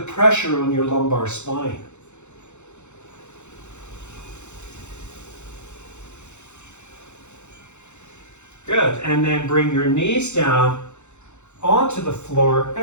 pressure on your lumbar spine. Good, and then bring your knees down onto the floor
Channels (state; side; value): late; right; 0.83 ms